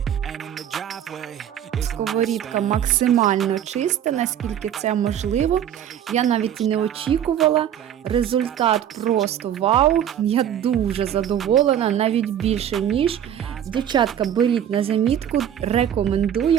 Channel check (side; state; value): left; quieter; 10.0 dB